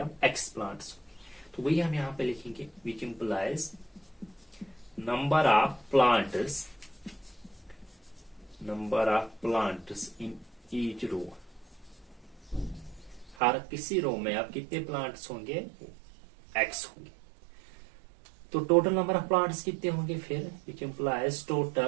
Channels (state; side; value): drops out; left; at 13.4 s